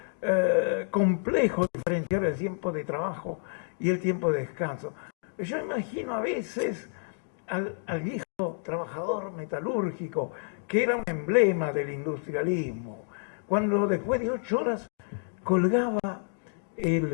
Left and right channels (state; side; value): silent; right; 55 dB below the other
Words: complejo diferenciar el tiempo de trabajo y el tiempo de descanso. Yo imagino a veces al viejo trabajador metalúrgico, que era un emblema del industrialismo, cuando después de 8 horas colgaba